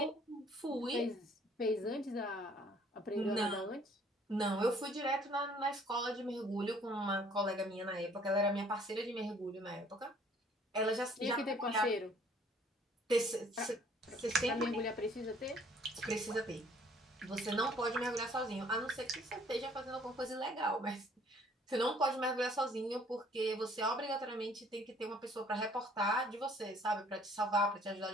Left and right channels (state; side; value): normal; both; correlation 0.59